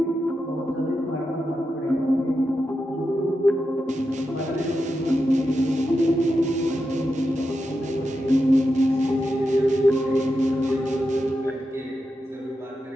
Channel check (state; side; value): normal; both; correlation 0.88